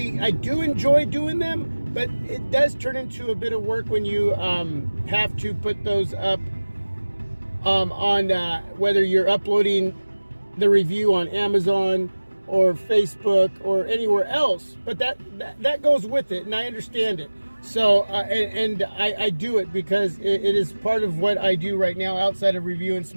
do enjoy doing them, but it does turn into a bit of work when you have to put those up on whether you're uploading the review on Amazon or Facebook or anywhere else. But that goes with it, and I understand it. So and I do it because it is part of what I do right now outside of reviewing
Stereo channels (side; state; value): both; inverted; correlation -1.00